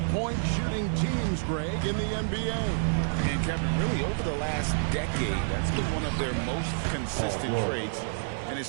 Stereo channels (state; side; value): silent; left; digital silence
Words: shooting teams, Greg, in the NBA. And Kevin, really over the last decade, that's been one of their most consistent traits. And